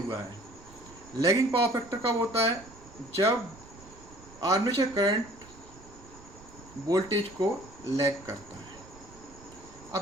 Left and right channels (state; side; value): noise; right; rumble, 21 dB below the sound